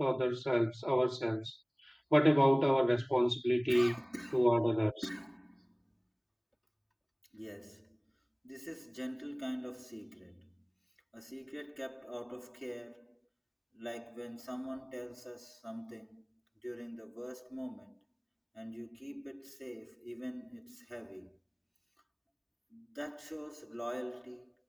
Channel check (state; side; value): identical; both; correlation 1.00